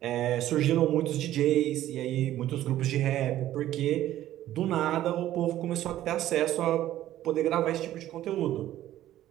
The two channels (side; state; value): left; quieter; 13.4 dB